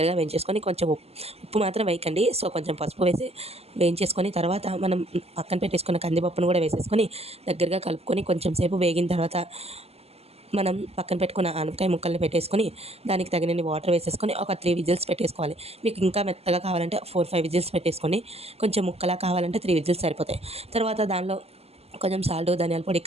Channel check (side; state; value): left; late; 0.29 ms